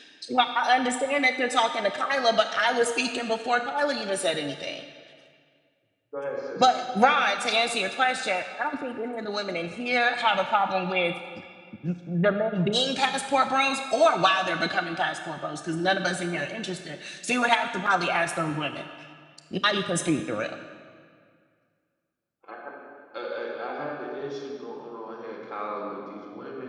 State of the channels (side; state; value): both; identical; correlation 1.00